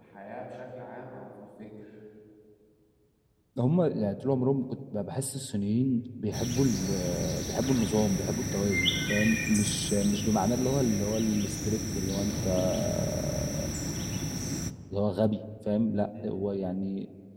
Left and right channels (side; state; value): both; identical; correlation 1.00